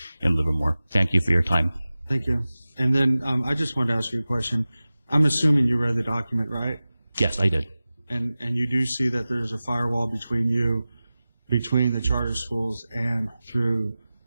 in Livermore. Thank you for your time. Thank you. And then I just wanted to ask you a question. I'm assuming you read the document, right? Yes, I did. And you do see that there's a firewall between the charter schools and through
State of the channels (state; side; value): inverted; both; correlation -0.97